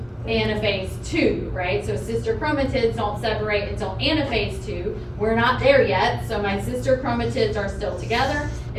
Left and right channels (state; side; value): identical; both; correlation 1.00